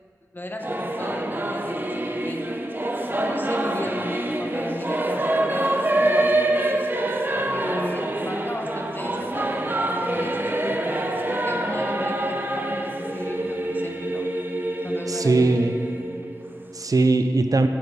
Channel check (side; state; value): both; normal; correlation 0.86